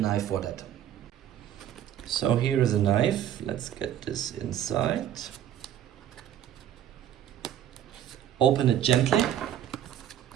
for that. So here is a knife. Let's get this inside. Open it gently.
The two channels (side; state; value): left; quieter; 10.8 dB